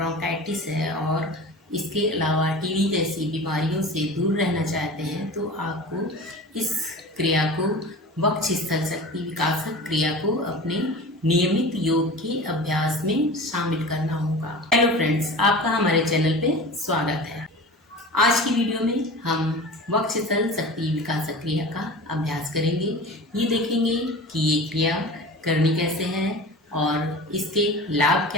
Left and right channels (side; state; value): both; normal; correlation 0.35